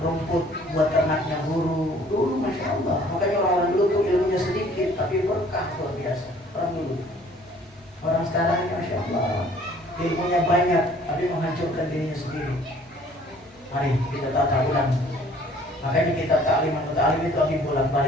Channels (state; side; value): normal; both; correlation 0.56